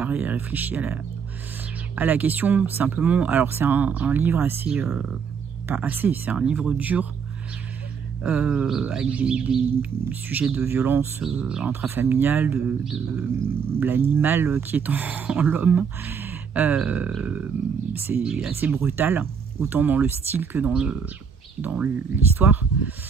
et réfléchi à la question. Simplement, alors c'est un livre assez, pas assez, c'est un livre dur. Avec des sujets de violence intrafamiliale, de l'animal qui est en l'homme. C'est assez brutal, autant dans le style que dans l'histoire.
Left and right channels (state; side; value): quieter; left; 6.4 dB